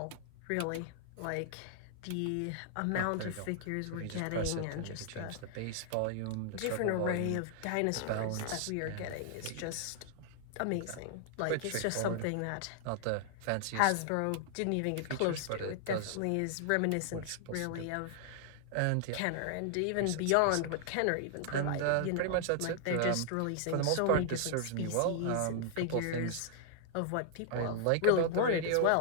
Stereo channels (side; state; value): both; different; correlation 0.00